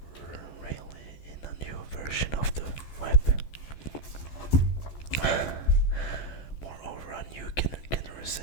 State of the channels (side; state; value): right; late; 14 ms